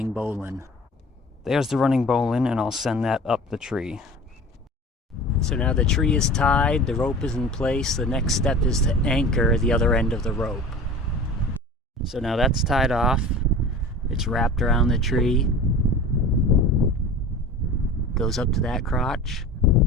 bowline. There's the running bowline, and I'll send that up the tree. So now the tree is tied, the rope is in place, the next step is to anchor the other end of the rope. So now that's tied off, it's wrapped around the tree, goes up to that crotch,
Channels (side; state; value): both; normal; correlation 0.38